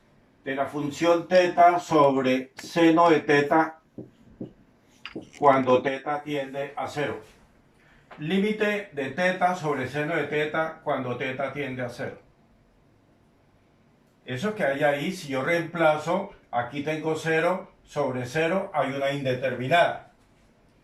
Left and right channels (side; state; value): both; identical; correlation 1.00